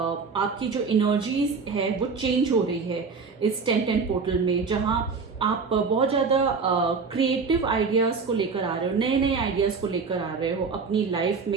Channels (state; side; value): quieter; left; 4.9 dB